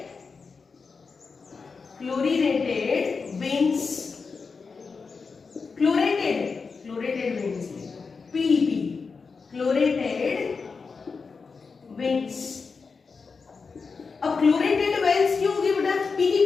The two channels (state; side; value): quieter; right; 4.9 dB